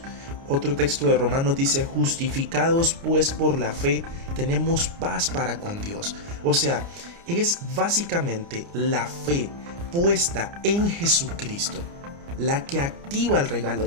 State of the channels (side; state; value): left; late; 29 ms